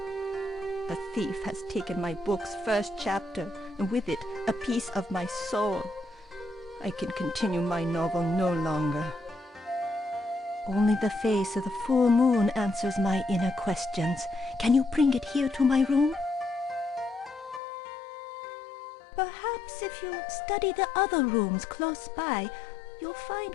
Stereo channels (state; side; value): drops out; right; at 17.6 s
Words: A thief has taken my book's first chapter, and with it, a piece of my soul. I can continue my novel no longer. Only the face of the full moon answers my inner questions. Can you bring it here to my room? Perhaps if you study the other rooms close by, you'll